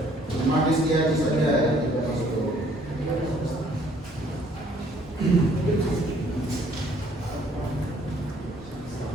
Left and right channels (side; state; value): both; normal; correlation 0.62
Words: Cuma Rizky Haji saja ya.